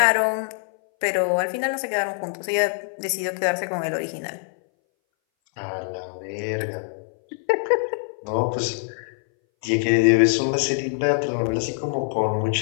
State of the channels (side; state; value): right; silent; 61 dB below the other